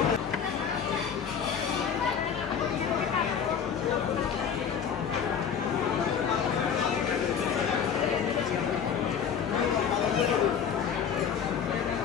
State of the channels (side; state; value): right; quieter; 7.3 dB